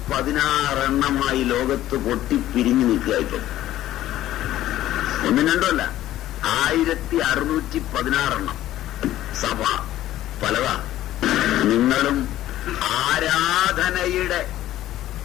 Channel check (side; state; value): right; quieter; 13.8 dB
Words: ലോകത്ത് പൊട്ടിപ്പിരിഞ്ഞു നിൽക്കുക. ഇപ്പം ഒന്നും രണ്ടുമല്ല, 1616 സഭ പലതാ. നിങ്ങളും ആരാധനയുടെ